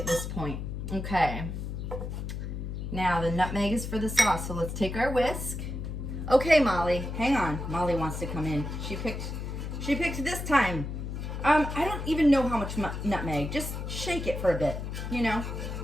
this point. Okay. Now the nutmeg is for the sauce, so let's take our whisk. Okay, Molly, hang on. Molly wants to come in. She picked this time. I don't even know how much nutmeg. Just shake it for a bit, you know.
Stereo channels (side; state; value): left; noise; hum, 5 dB below the sound